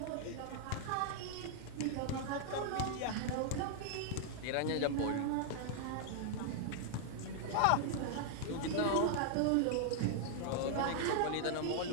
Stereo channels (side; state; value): both; different; correlation -0.01